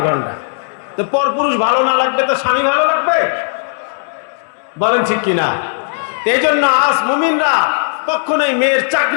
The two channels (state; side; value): silent; right; digital silence